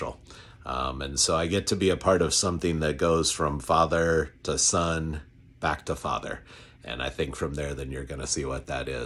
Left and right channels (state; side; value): identical; both; correlation 1.00